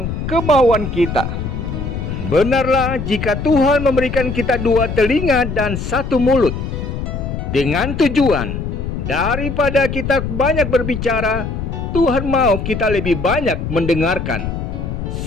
kemauan kita. Benarlah jika Tuhan memberikan kita dua telinga dan satu mulut, dengan tujuan daripada kita banyak berbicara, Tuhan mau kita lebih banyak mendengarkan.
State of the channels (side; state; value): left; noise; rumble, 5 dB below the sound